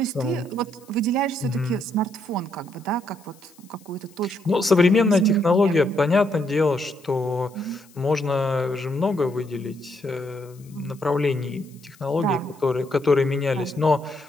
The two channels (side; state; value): left; noise; hiss, 27 dB below the sound